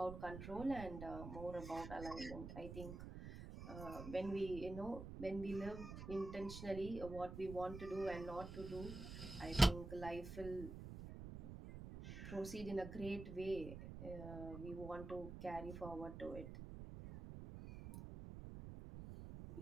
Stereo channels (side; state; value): right; noise; rumble, 8 dB below the sound